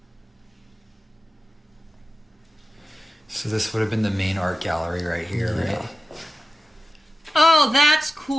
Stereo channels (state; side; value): normal; both; correlation 0.93